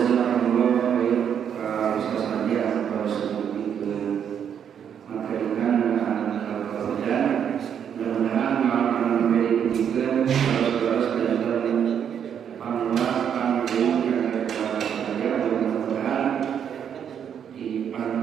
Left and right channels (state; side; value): quieter; left; 8.4 dB